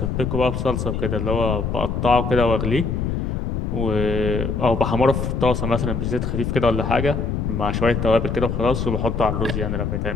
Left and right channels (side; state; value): left; noise; rumble, 1 dB below the sound